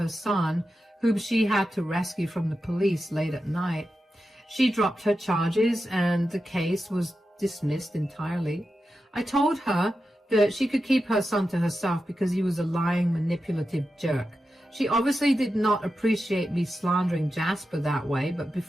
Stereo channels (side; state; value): both; normal; correlation 0.90